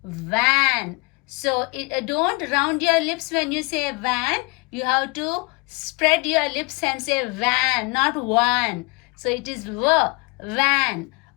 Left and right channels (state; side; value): quieter; right; 29.5 dB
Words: van. So don't round your lips when you say van. You have to spread your lips and say van, not one. So it is van.